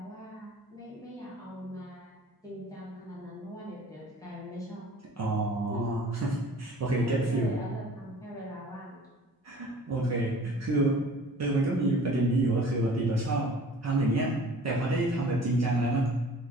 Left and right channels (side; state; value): both; normal; correlation 0.47